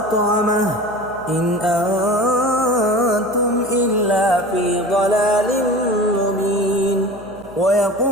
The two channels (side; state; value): right; noise; hum, 21 dB below the sound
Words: إن أنتم إلا في ضلال مبين